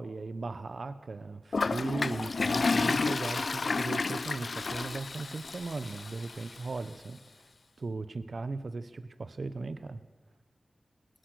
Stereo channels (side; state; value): both; normal; correlation 0.93